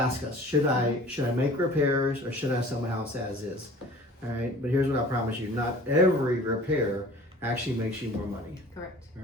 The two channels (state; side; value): normal; both; correlation 0.46